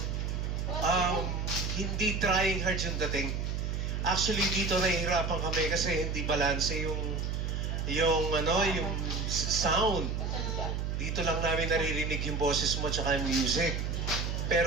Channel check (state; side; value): noise; right; hum, 1 dB below the sound